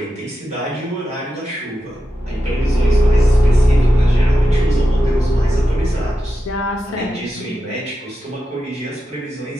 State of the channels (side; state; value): both; normal; correlation 0.89